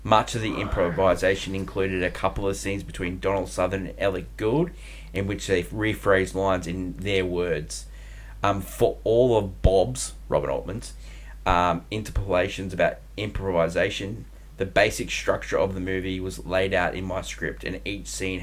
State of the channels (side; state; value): both; identical; correlation 1.00